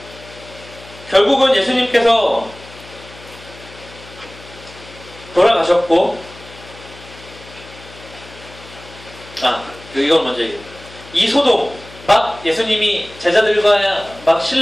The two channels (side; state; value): left; noise; hum, 19 dB below the sound